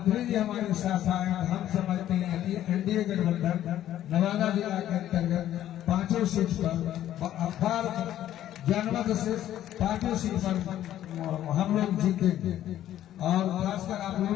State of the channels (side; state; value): right; quieter; 12.2 dB